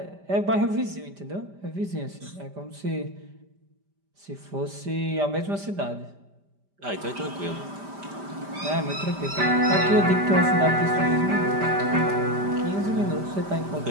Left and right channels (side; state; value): left; late; 5.1 ms